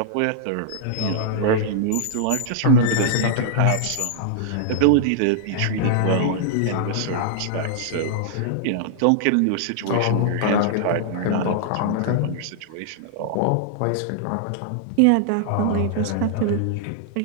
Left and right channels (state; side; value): different; both; correlation -0.01